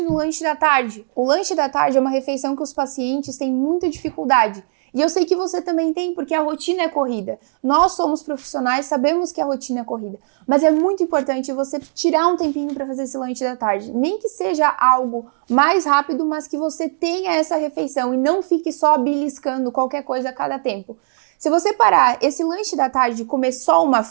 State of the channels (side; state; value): left; silent; digital silence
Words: no lanche da tarde. O lanche da tarde é uma refeição que os pacientes têm muita dificuldade. E eu sei que você também tem, porque a rotina é corrida. Nós somos profissionais, sabemos que a rotina é corrida. Mas é muito importante você tirar um tempinho para fazer esse lanche da tarde. Nem que seja algo mais rápido, mas que você tenha essa refeição e não fique só beliscando qualquer coisa a cada tempo. Se você parar esse lanche da tarde e comer só uma